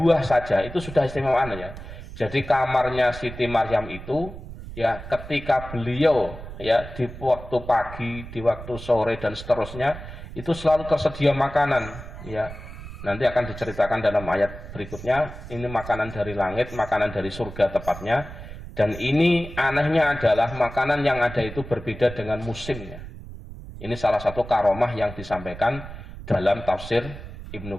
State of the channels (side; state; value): right; noise; rumble, 12 dB below the sound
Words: saja itu sudah istimewaan ya. Jadi kamarnya Siti Maryam itu ya, ketika beliau ya di waktu pagi, di waktu sore dan seterusnya itu selalu tersedia makanan ya. Nanti akan diceritakan dalam ayat berikutnya, ini makanan dari langit, makanan dari surga tepatnya. Dan ini anehnya adalah makanan yang ada itu berbeda dengan musimnya. Ini salah satu karomah yang disampaikan dalam tafsir Ibnu